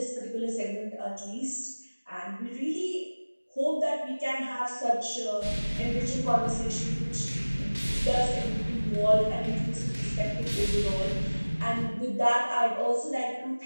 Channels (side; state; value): both; inverted; correlation -1.00